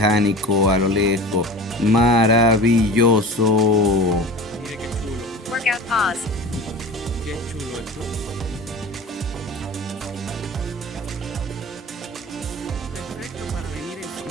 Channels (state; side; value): normal; both; correlation 0.36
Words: a lo lejos. Maravilloso. Mire qué chulo. Workout pause. Qué chulo esto. Perfecto para venir en